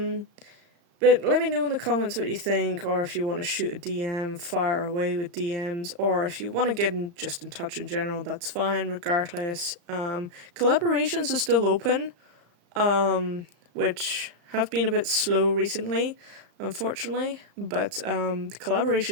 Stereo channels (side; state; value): left; late; 35 ms